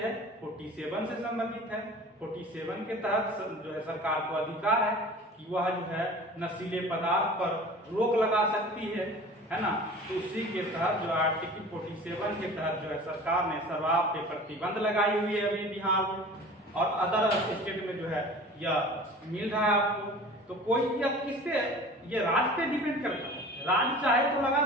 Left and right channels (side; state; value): both; normal; correlation 0.41